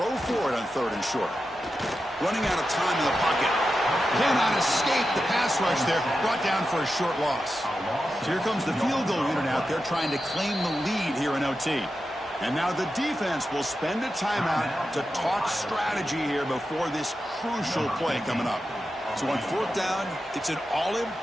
for it on 3rd and short. Running out of time in the pocket. Cannot escape the pass rush there. Brought down for a short loss. So here comes the field goal unit out there trying to claim the lead here in OT. And now the defense will spend a timeout to talk strategy here before this crucial play coming up. So on 4th down, it's an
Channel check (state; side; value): normal; both; correlation 0.90